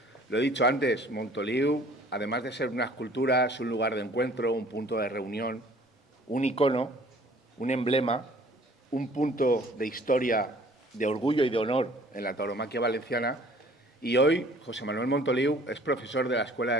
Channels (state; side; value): normal; both; correlation 0.53